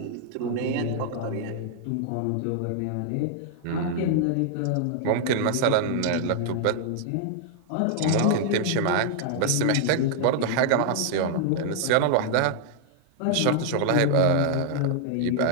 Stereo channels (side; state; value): both; different; correlation -0.01